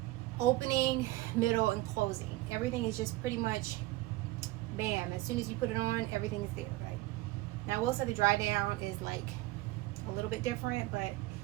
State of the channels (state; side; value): quieter; left; 18.6 dB